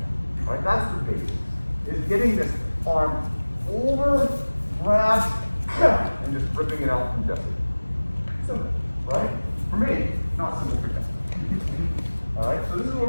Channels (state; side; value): inverted; both; correlation -1.00